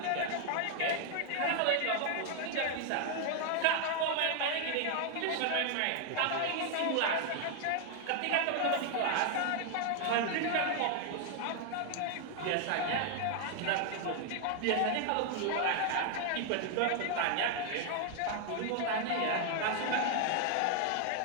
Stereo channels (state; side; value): different; both; correlation 0.00